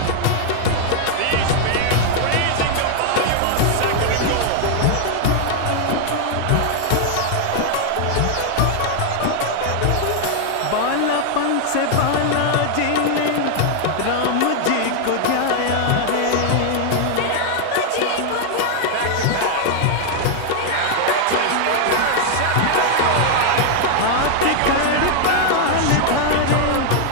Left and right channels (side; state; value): both; different; correlation 0.00